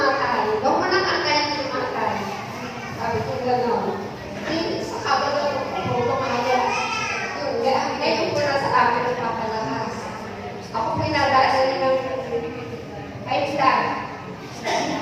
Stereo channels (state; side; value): identical; both; correlation 1.00